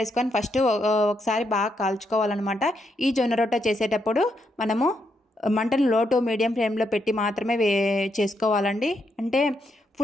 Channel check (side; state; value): both; normal; correlation 0.79